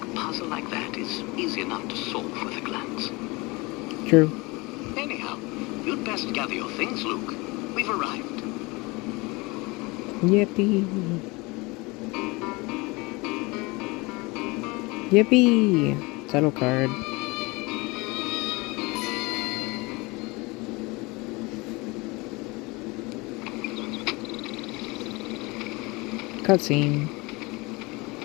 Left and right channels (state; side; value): quieter; right; 24.9 dB